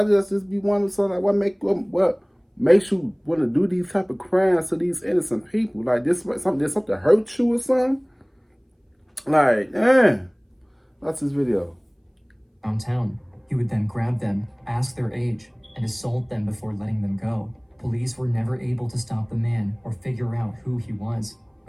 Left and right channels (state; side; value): identical; both; correlation 1.00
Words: just be wondering something like what makes you want to do these type of crimes to these innocent people? Like did something hurt you or something? Like, damn, that's this video. Downtown. He would then grab them, ask their age, and assault them before letting them go. Police were never able to stop the man or figure out who he was.